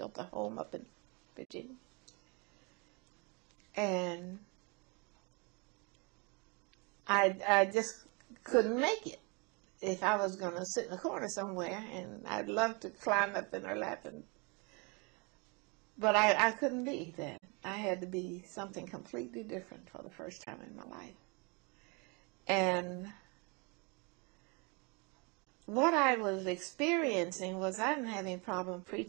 a home up in Virginia. And I just couldn't make it if I was going to sit in a corner somewhere, and I'd love to climb up in her lap. But I couldn't be that. I had to be something completely different for the first time in my life. And what I was experiencing was I didn't have any problem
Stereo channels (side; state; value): left; quieter; 31.1 dB